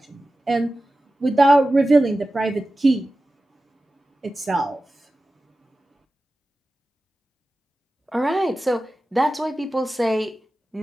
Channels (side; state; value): both; normal; correlation 0.95